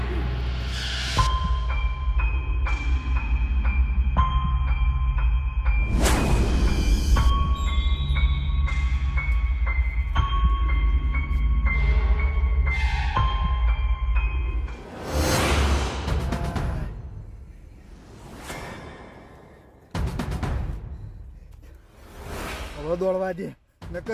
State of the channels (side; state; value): both; identical; correlation 1.00